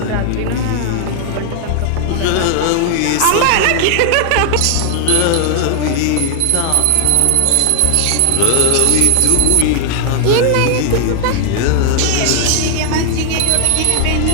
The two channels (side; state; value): both; different; correlation 0.00